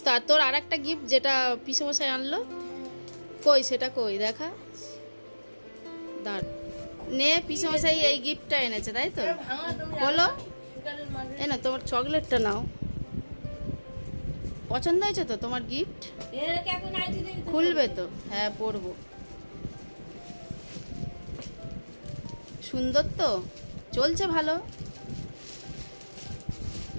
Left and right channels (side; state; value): both; inverted; correlation -1.00